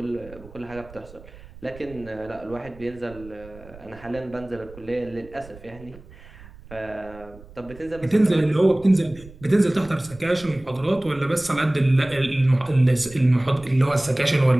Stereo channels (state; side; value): noise; right; rumble, 20 dB below the sound